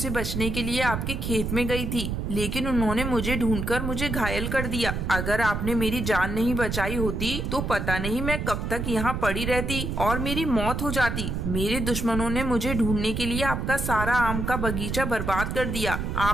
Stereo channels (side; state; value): right; noise; rumble, 3 dB below the sound